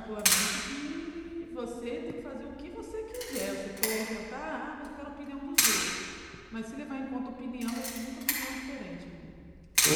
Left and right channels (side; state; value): both; identical; correlation 1.00